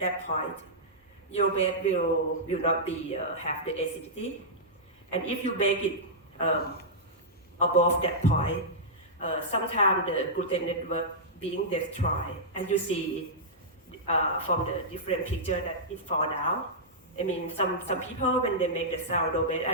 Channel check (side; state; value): both; normal; correlation -0.12